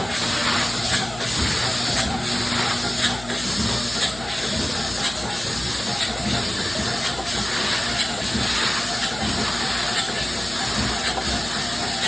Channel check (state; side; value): noise; left; hum, 15 dB below the sound